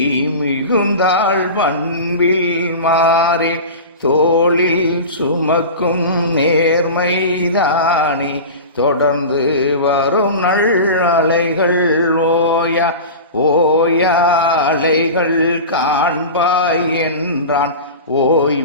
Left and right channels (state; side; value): inverted; both; correlation -0.30